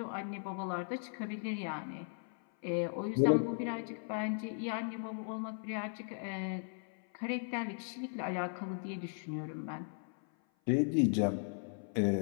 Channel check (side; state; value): right; silent; 53 dB below the other